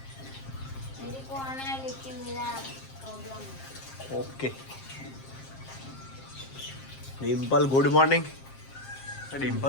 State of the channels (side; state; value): right; late; 7.5 ms